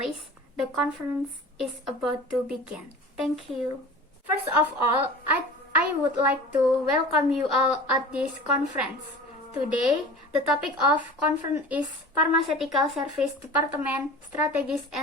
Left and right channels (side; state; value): both; normal; correlation 0.38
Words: The conference is about to begin. Thank you. First of all, I would like to welcome you all at this conference. Today, the topic of conference is Pharmaceutical Service Department Strategies